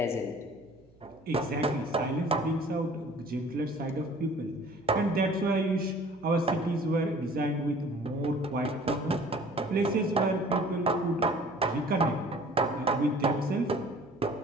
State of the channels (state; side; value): noise; right; hum, 28 dB below the sound